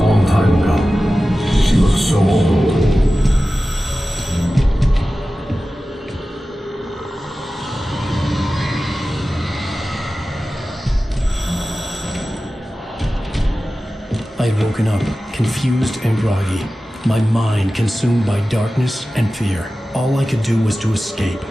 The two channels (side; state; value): both; normal; correlation 0.95